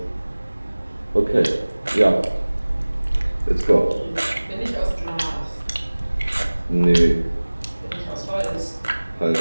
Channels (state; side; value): inverted; both; correlation -1.00